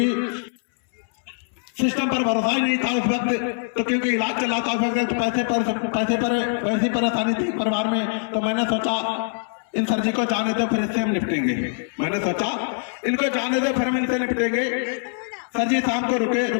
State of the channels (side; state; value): right; silent; 63 dB below the other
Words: सिस्टम पर भरोसा ही नहीं था उस वक्त। तो क्योंकि इलाज चला था उस वक्त, पैसे पर वैसी परेशानी थी परिवार में। तो मैंने सोचा इन सर जी को जाने दो, फिर इससे हम निपटेंगे। मैंने सोचा इनको जाने दो, फिर हम इनसे निपटेंगे। सर जी शाम को